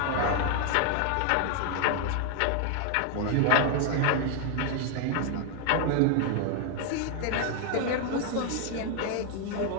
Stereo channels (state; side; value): different; both; correlation 0.00